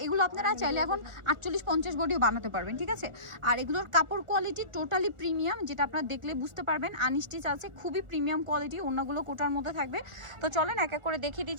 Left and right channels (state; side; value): late; left; 1.4 ms